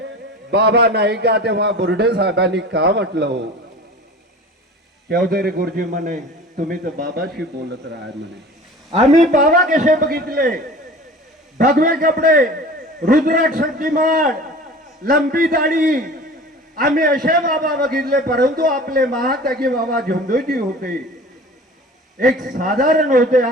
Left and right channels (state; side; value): normal; both; correlation 0.40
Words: बाबा नाही का. तेव्हा बुर्डे साहेबांनी का म्हटलं हो. चौधरी गुरुजी म्हणे तुम्ही तर बाबाशी बोलत राहा म्हणे. आम्ही बाबा कसे बघितले, भगवे कपडे, रुद्राक्ष शक्तिमान, लंबी दाढी, आम्ही असे बाबा बघितले. परंतु आपले महात्यागी बाबा झुमदेवजी होते, एक साधारण होते.